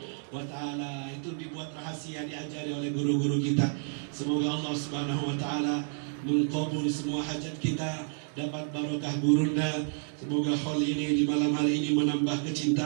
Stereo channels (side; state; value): left; silent; 58 dB below the other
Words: wa ta'ala. Itu dibuat rahasia, diajari oleh guru-guru kita. Semoga Allah Subhanahu wa ta'ala mengkabul semua hajat kita, dapat barokah gurunda. Semoga hal ini di malam hari ini menambah